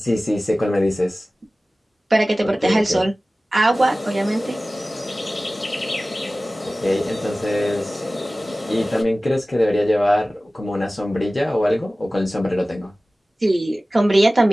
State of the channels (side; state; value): both; normal; correlation 0.97